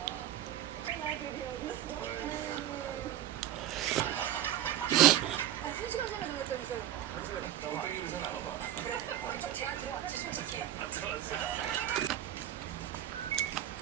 한 시간 전에 정했다면서요? 한 시간 있다고 빼기를 잘 나눠봐. 제가 들어왔지, 솔직히. 들어왔어.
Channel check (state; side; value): quieter; left; 12.1 dB